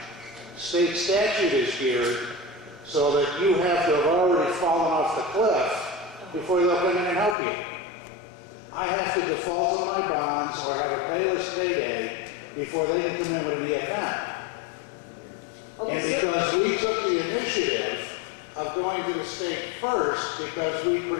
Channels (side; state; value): right; drops out; at 7.4 s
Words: State statute is geared so that you have to have already fallen off the cliff before they'll come in and help you. I have to default on my bonds or have a payless payday before they can come in with an EFM. And because we took the initiative of going to the state first because we